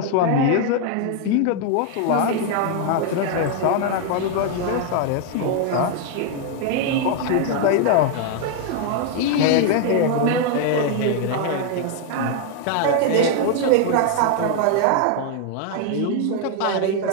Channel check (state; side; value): different; both; correlation 0.00